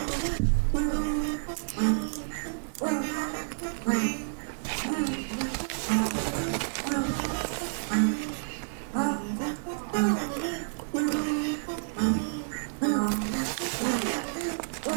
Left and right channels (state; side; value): silent; left; 58 dB below the other